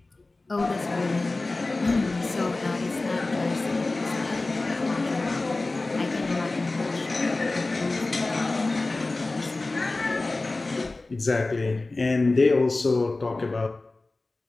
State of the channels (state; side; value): quieter; right; 3.2 dB